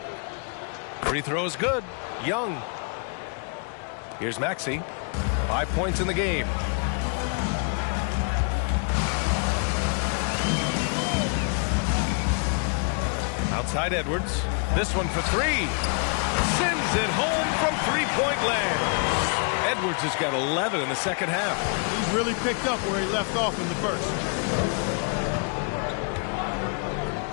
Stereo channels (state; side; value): quieter; right; 39.3 dB